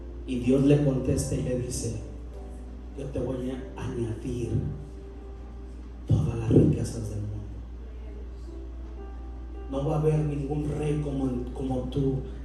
Y Dios le contesta y le dice, yo te voy a añadir todas las riquezas del mundo. No va a haber ningún rey como tú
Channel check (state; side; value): identical; both; correlation 1.00